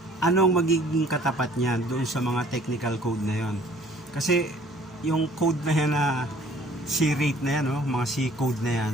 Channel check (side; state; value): both; normal; correlation 0.55